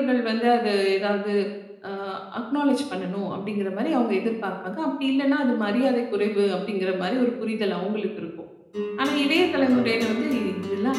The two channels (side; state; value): both; identical; correlation 1.00